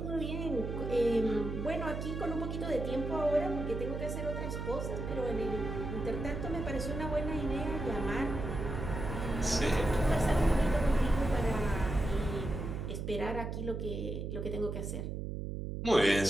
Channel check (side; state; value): right; noise; hum, 4 dB below the sound